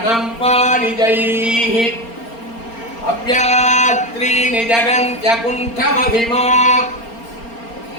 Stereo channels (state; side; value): late; right; 4.3 ms